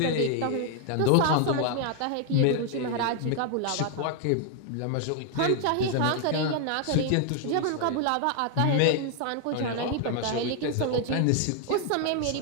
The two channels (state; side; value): different; both; correlation 0.00